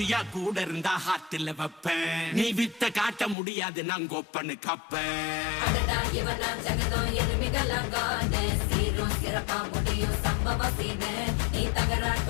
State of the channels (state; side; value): drops out; right; at 3.4 s